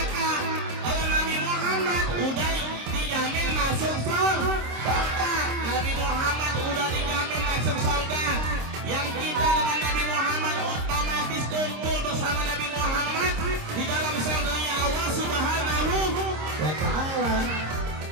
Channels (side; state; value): left; late; 26 ms